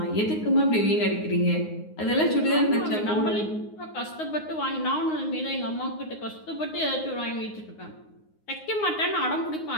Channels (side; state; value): right; late; 9.5 ms